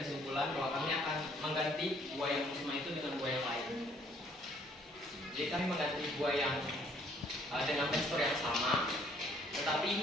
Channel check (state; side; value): normal; both; correlation 0.63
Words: kesimpulan bahwa kami akan mengganti buah yang musiman itu dengan buah yang lain. Jadi kami mengganti buah yang dengan tekstur yang sama,